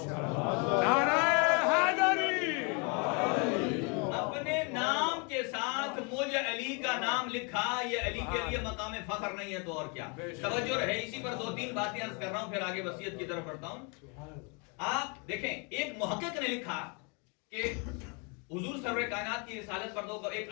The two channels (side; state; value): right; quieter; 34.0 dB